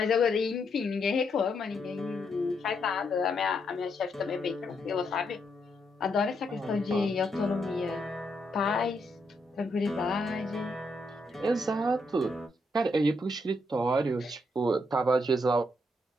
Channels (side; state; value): both; normal; correlation 0.78